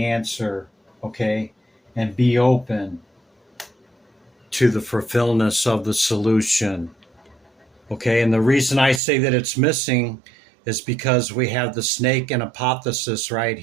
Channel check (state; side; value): drops out; left; at 9.0 s